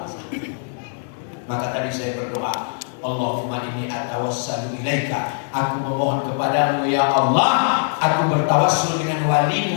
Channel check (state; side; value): silent; right; digital silence